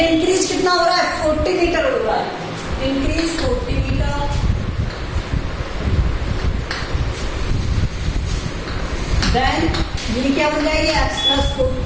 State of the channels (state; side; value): identical; both; correlation 1.00